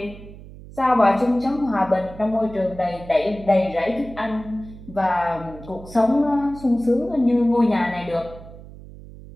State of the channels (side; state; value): right; noise; hum, 17 dB below the sound